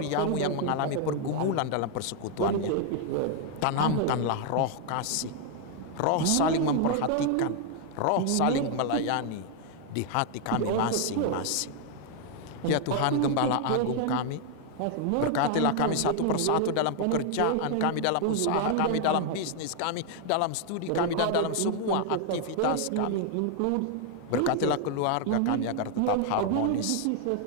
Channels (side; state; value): both; different; correlation 0.00